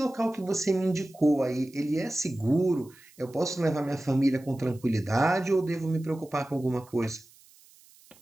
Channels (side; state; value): right; noise; hiss, 27 dB below the sound